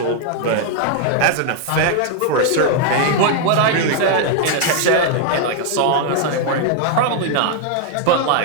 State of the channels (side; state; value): both; different; correlation 0.00